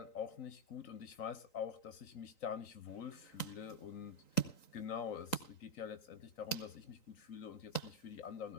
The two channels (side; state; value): right; late; 3.9 ms